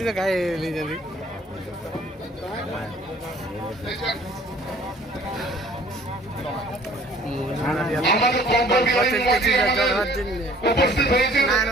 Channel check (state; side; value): normal; both; correlation 0.54